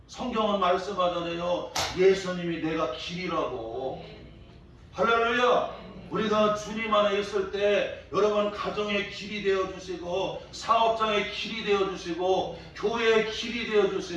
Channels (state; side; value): identical; both; correlation 1.00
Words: 성경은 말씀하잖아요. 예수님이 내가 길이라고. 할렐루야. 우리가 주님 안에 있을 때 여러분 가정의 길이 되어주시고 사업장의 길이 되어주시고 교회의 길이